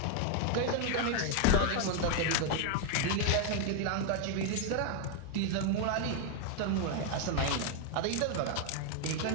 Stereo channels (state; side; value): different; both; correlation 0.01